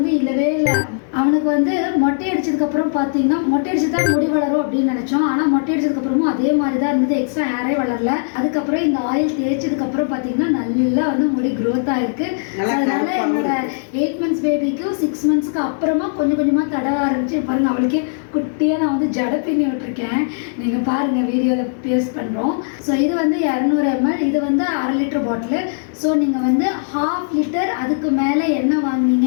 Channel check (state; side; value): silent; right; digital silence